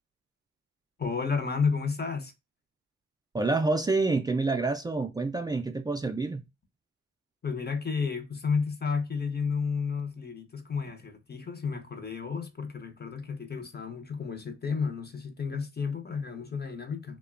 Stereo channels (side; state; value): both; normal; correlation 0.71